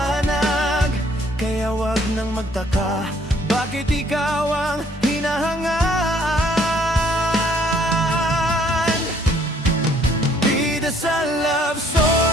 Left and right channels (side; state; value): both; normal; correlation 0.63